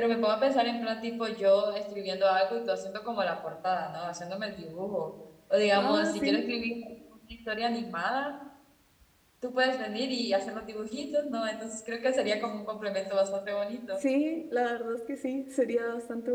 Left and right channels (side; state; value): both; identical; correlation 1.00